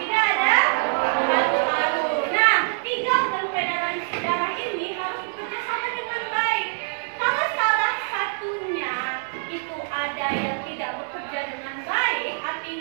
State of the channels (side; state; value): left; silent; 62 dB below the other